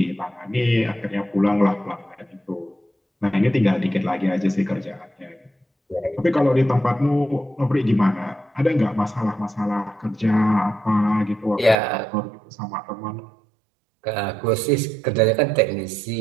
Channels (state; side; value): drops out; left; at 11.8 s